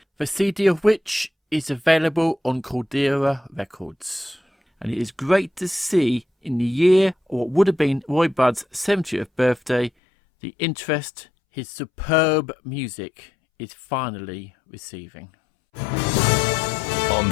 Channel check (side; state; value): right; drops out; at 9.9 s